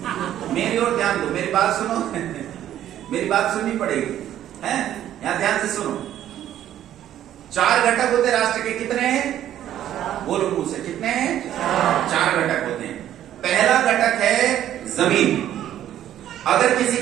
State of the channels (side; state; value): left; quieter; 11.6 dB